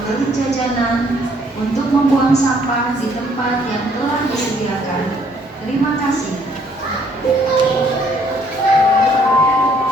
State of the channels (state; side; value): normal; both; correlation 0.65